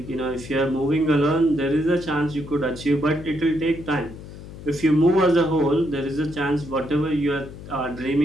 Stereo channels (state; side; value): noise; left; hum, 14 dB below the sound